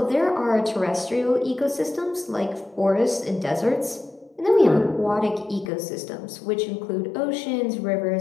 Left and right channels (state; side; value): drops out; right; at 5.7 s